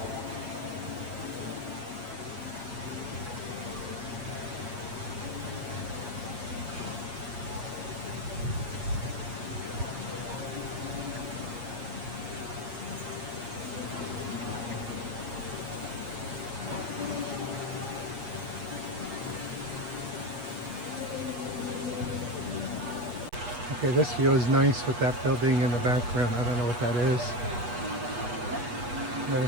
Okay, this view is nice with that building in the background. I don't know what that is. I'm going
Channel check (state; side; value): late; left; 8.3 ms